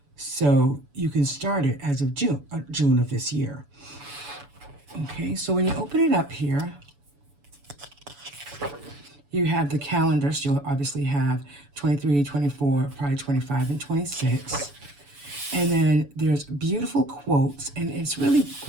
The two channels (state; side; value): late; left; 7.0 ms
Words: So you can start it as of June of this year. Okay, so when you open it up here, you have the calendars. You'll obviously have 23, 24, probably 25, and 26. And then there's beautiful quotes, and it's really